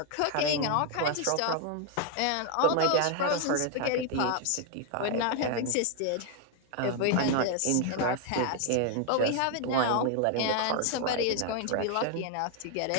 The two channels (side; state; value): both; different; correlation 0.00